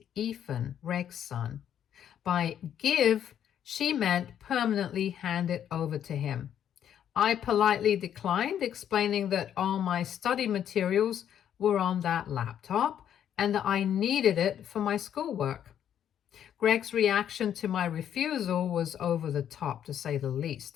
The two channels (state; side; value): quieter; right; 9.7 dB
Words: Ethan, Greg's son. By give, she meant permanently hand it over to him. I politely declined, explaining that all my study materials were on that laptop and that I needed it for my schoolwork. Greg's reaction to my refusal was over the top, to say the